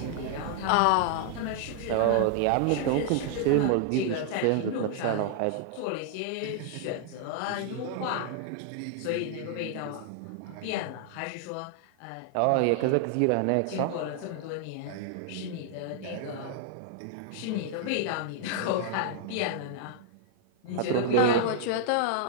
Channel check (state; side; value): different; both; correlation -0.01